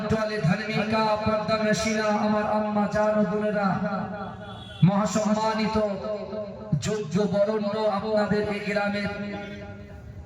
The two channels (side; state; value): both; identical; correlation 1.00